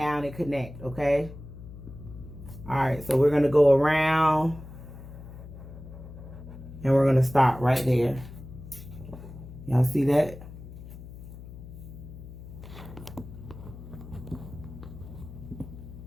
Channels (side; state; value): left; noise; hum, 14 dB below the sound